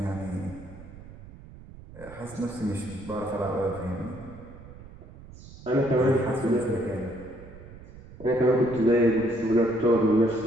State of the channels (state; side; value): noise; right; rumble, 17 dB below the sound